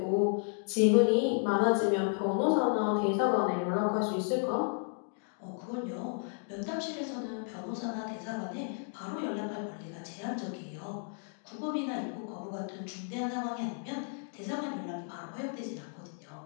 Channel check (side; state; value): right; silent; 56 dB below the other